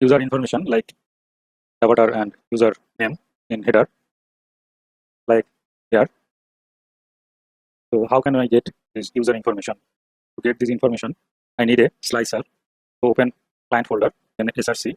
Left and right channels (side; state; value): both; identical; correlation 1.00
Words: information like avatar and user name in header like here. So how can I get this user information? To get this information, I need a slicer. So open client folder, then src,